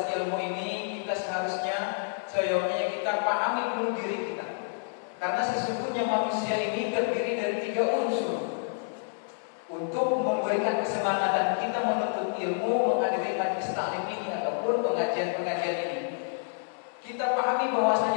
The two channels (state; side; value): silent; right; digital silence